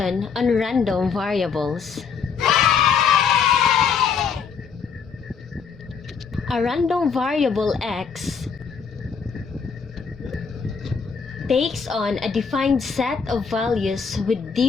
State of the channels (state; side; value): quieter; right; 6.0 dB